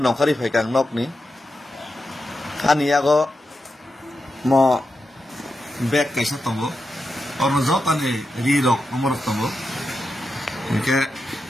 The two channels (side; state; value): both; normal; correlation 0.88